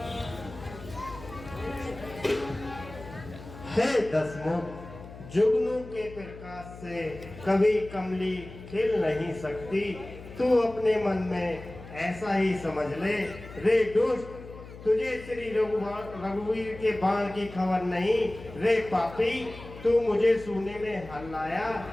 हे दसमुख, जुगनू के प्रकाश से कभी कमली खिल नहीं सकती। तू अपने मन में ऐसा ही समझ ले। रे दुष्ट, तुझे श्री रघुवीर के बाण की खबर नहीं। रे पापी, तू मुझे सूने में हल्लाया।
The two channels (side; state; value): left; noise; hum, 15 dB below the sound